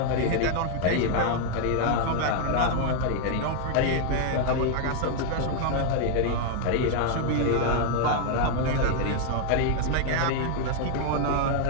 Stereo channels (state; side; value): different; both; correlation 0.00